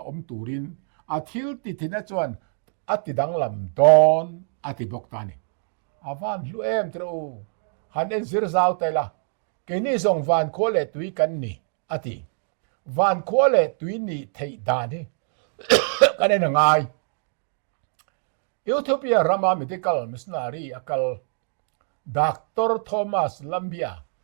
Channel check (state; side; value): silent; left; digital silence